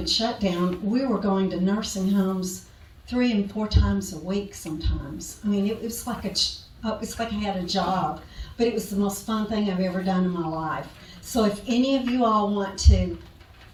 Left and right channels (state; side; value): identical; both; correlation 1.00